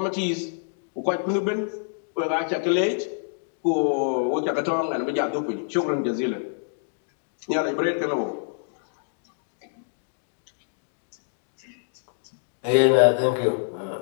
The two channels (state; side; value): silent; right; digital silence